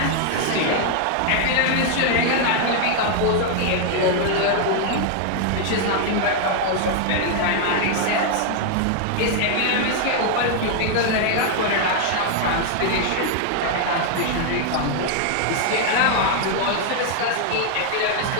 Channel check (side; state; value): both; different; correlation 0.00